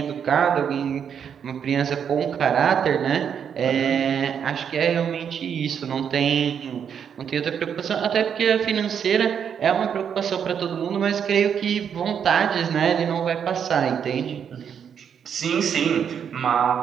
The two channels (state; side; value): quieter; left; 7.8 dB